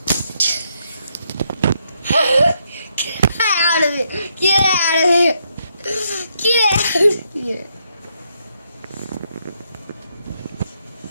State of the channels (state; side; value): inverted; both; correlation -0.77